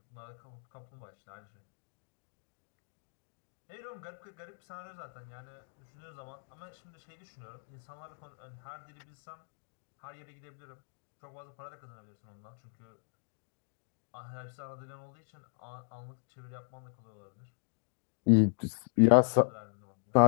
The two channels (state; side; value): silent; right; digital silence